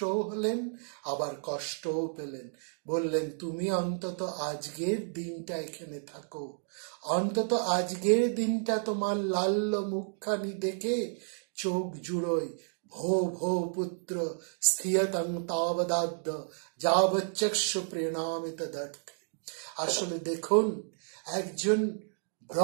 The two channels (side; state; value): left; silent; digital silence